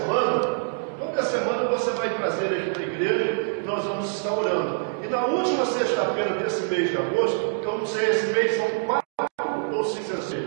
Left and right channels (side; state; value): left; silent; digital silence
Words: você vai trazer aqui para a igreja e nós vamos estar orando. E na última sexta-feira desse mês de agosto, eu não sei, esse mês são 4 ou 5 ou